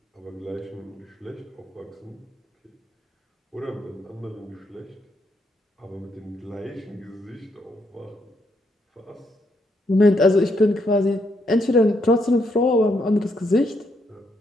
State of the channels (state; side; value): normal; both; correlation 0.76